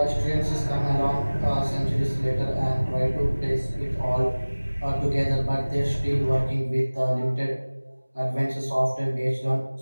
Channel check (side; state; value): both; inverted; correlation -1.00